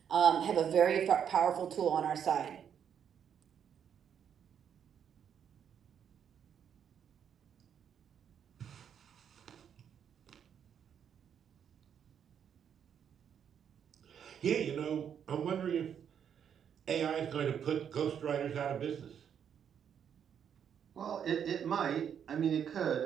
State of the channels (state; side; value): quieter; left; 8.3 dB